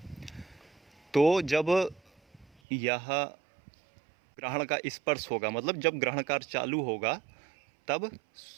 तो जब यह ग्रहण का स्पर्श होगा, मतलब जब ग्रहण कार्य चालू होगा, तब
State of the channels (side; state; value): left; drops out; at 2.5 s